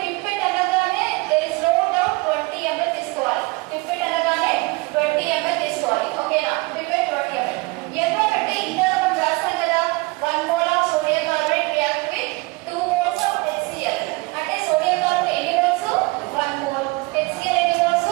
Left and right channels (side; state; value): left; quieter; 25.4 dB